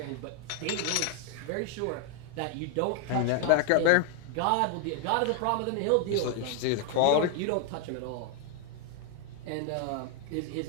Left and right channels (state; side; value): different; both; correlation 0.00